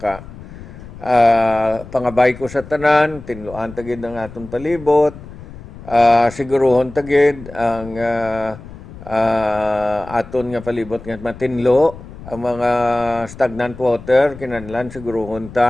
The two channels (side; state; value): left; noise; rumble, 16 dB below the sound